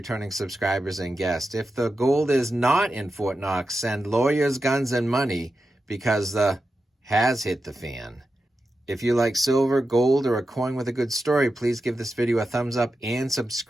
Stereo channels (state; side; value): normal; both; correlation 0.90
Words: subscribers and guests. If the gold is not in Fort Knox, send lawyers, guns, and money because the has hit the fan. If you like silver, gold, or a coin with a good story, please give this video a thumbs up and